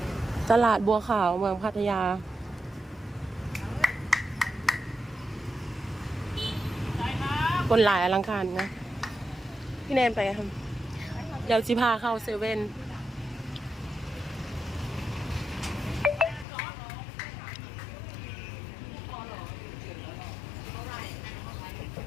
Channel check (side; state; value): right; drops out; at 16.4 s